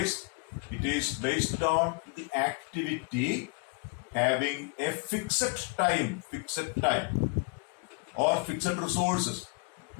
it is based on the activity having a fixed time or fixed resources,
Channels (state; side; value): quieter; right; 32.9 dB